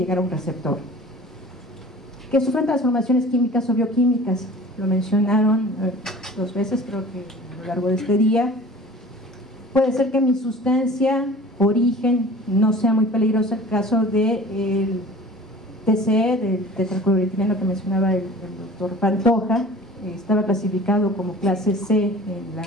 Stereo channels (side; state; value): both; normal; correlation 0.43